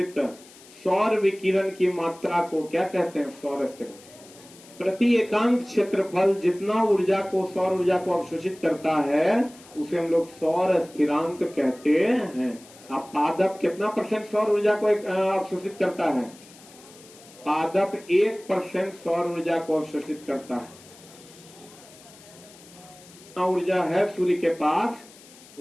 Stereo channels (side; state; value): left; noise; hiss, 22 dB below the sound